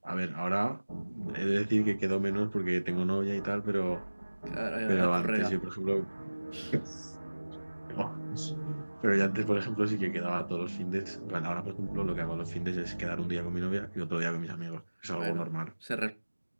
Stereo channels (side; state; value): both; inverted; correlation -1.00